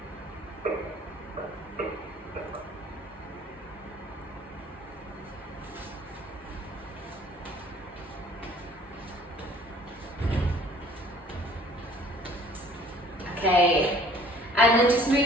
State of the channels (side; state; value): both; normal; correlation 0.54